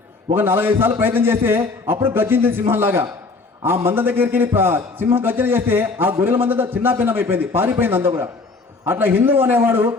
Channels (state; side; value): quieter; right; 3.9 dB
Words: ఒక 4-5 సార్లు ప్రయత్నం చేస్తే అప్పుడు గర్జించింది సింహంలాగా. ఆ మంద దగ్గరికి వెళ్ళి సింహం గర్జన చేస్తే ఆ గొర్రెల మంద చిన్న భిన్నం అయిపోయింది, పారిపోయింది అంతా కూడా. అట్లా హిందువు అనేవాడు